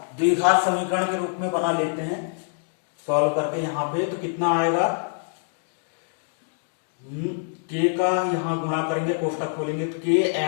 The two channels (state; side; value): silent; right; digital silence